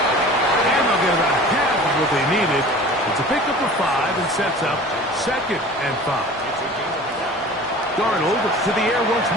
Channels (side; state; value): both; normal; correlation 0.42